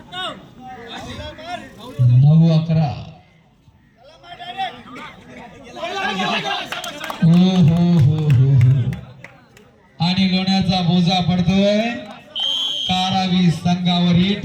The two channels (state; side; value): identical; both; correlation 1.00